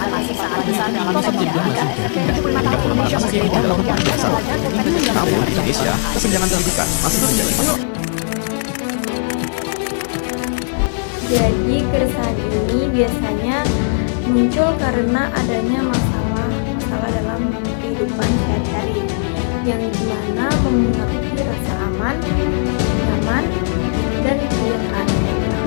masih saat besar dalam sejarah SMP 75 tahun Indonesia berbeda yang belajar Namun di Indonesia, kesenjangan pendidikan masih terjadi. Jadi, keresahan ini biasanya muncul karena adanya masalah dalam kehidupan sehari-hari yang dimana memengaruhi rasa aman, nyaman, dan kesejahteraan mereka.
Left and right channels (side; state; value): right; silent; 67 dB below the other